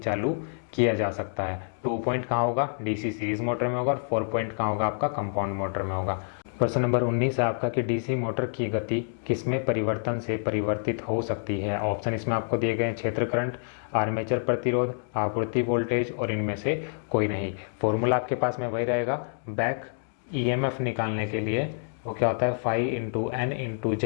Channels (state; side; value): silent; right; digital silence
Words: किया जा सकता है। 2 पॉइंट कहाँ होगा, डीसी सीरीज मोटर में होगा, और 4 पॉइंट कहाँ होगा, आपका कंपाउंड मोटर में होगा। प्रश्न नंबर 19 है आपका कि डीसी मोटर की गति किसमें परिवर्तन से परिवर्तित हो सकती है। ऑप्शन इसमें आपको दिए गए हैं, क्षेत्र करंट, आर्मेचर प्रतिरोध, आपूर्ति वोल्टेज, और इनमें से कोई नहीं। फॉर्मूला आपके पास में वही रहेगा, बैक ईएमएफ निकालने के लिए वो क्या होता है, phi into N into